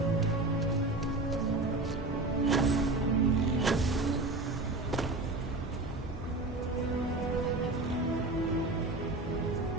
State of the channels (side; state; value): left; quieter; 3.0 dB